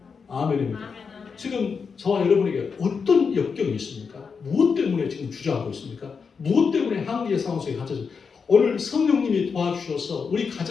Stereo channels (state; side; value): quieter; right; 5.6 dB